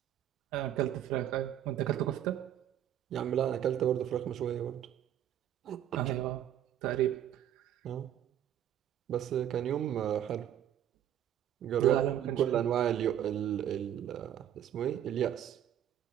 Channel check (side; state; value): left; quieter; 10.8 dB